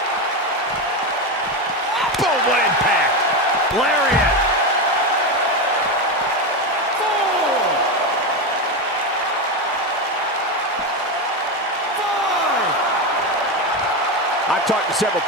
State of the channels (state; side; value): normal; both; correlation 0.14